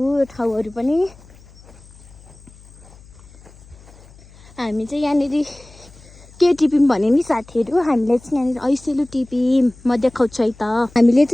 ठाउँहरू पनि। हामी चाहिँ यहाँनिर के टिप्यौँ भने नि साथीहरू, हामीले चाहिँ यहाँनिर ऐसेलु टिप्यौँ। म देखाउँछु है त। हामीले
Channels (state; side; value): noise; left; hum, 23 dB below the sound